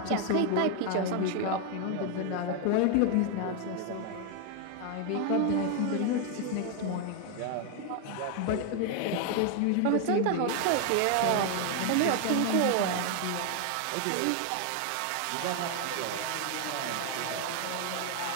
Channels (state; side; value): different; both; correlation 0.01